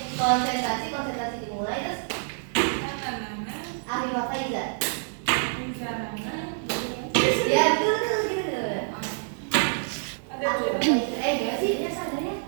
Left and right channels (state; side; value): silent; left; 60 dB below the other